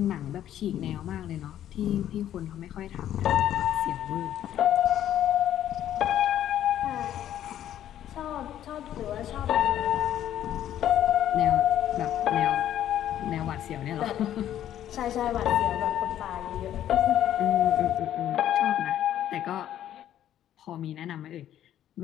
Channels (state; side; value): quieter; right; 11.4 dB